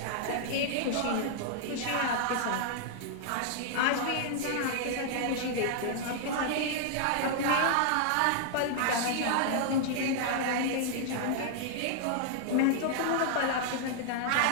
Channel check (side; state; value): both; different; correlation -0.01